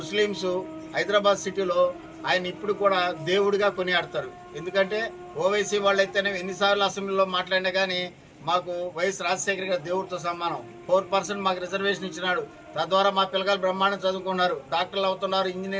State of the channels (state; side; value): identical; both; correlation 1.00